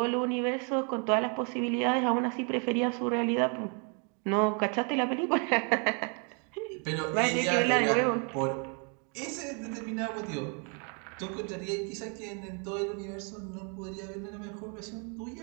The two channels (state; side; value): quieter; left; 37.2 dB